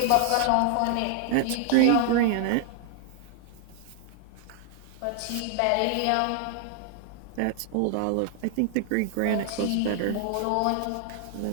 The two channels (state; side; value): different; both; correlation 0.00